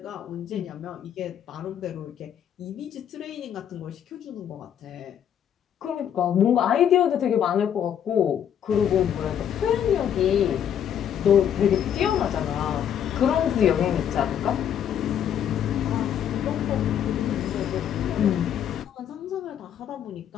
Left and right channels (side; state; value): right; quieter; 9.3 dB